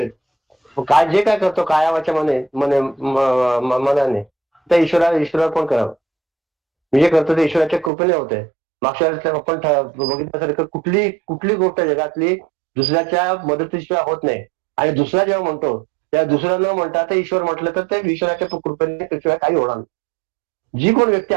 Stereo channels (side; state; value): left; drops out; at 7.9 s